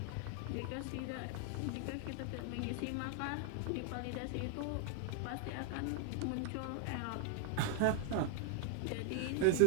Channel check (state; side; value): different; both; correlation 0.00